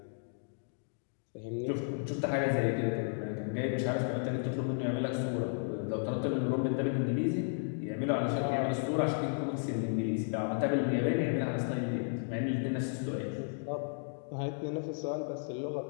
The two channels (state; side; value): silent; right; digital silence